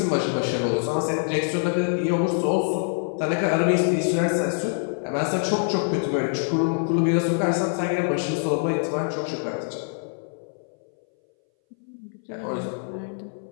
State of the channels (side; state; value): right; silent; 60 dB below the other